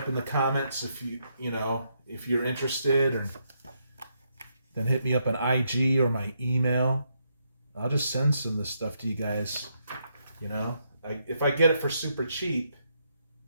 in the comments if if you're interested, or then hit me up on IG or my email. I'll just send some of this stuff to you guys. If I get it for super cheap,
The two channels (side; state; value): both; inverted; correlation -0.78